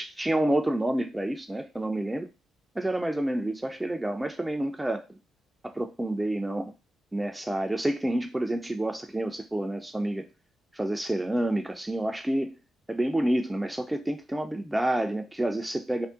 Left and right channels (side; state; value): both; normal; correlation 0.96